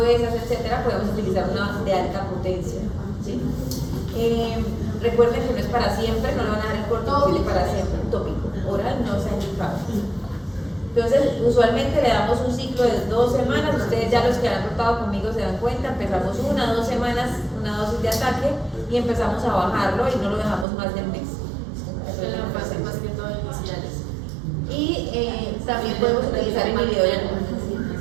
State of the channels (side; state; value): left; drops out; at 20.7 s